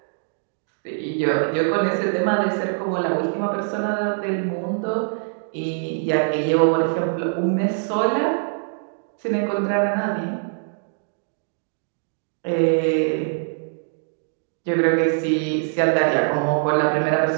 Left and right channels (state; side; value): silent; left; digital silence